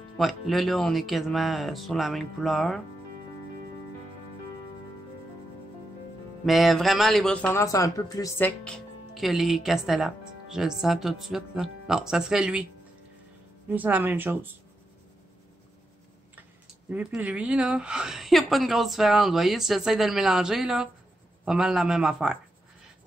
Ouais, là, on est quasiment sur la même couleur. Mais vraiment, les Brut Ferner sont un peu plus secs que les Castellates. Je le sens tout de suite, là. Non, ça serait lui. Lui, c'est la même chose. Lui puis lui, là, il n'y a pas une grosse différence. Vous voyez, si j'essaie de le mélanger, là, pas mal la même affaire. C'est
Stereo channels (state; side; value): normal; both; correlation 0.85